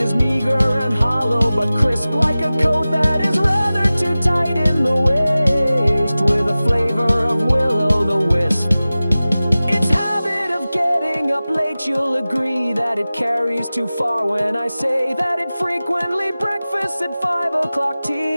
meager and hollow, but crisp like a coat that is rather too tight in the waist, with a flavor of will-o'-the-wisp. Its habit of getting up late, you'll agree that it carries too far when I say that it frequently breakfasts at 5 o'clock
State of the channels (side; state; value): both; inverted; correlation -0.97